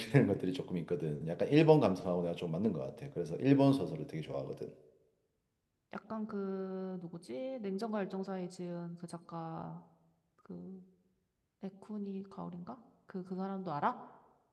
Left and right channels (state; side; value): identical; both; correlation 1.00